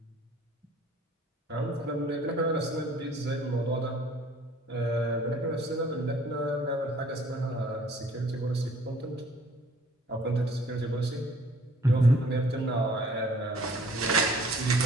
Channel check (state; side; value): normal; both; correlation 0.56